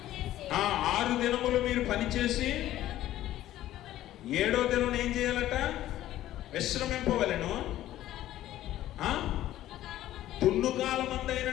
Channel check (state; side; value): quieter; right; 13.8 dB